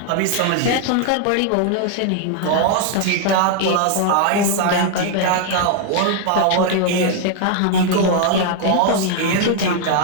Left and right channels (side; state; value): both; different; correlation 0.00